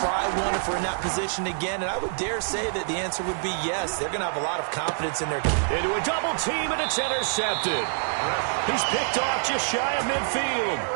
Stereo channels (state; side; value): silent; left; digital silence